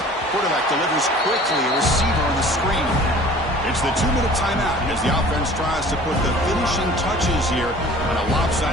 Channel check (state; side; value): normal; both; correlation 0.47